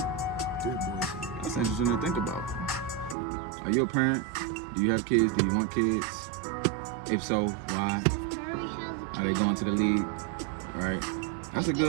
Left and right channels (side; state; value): left; drops out; at 3.2 s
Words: 3 boys. That's interesting to think about. Are you a parent? Do you have kids? Do you want kids? If so, why? Are they going to the league? Right? That's a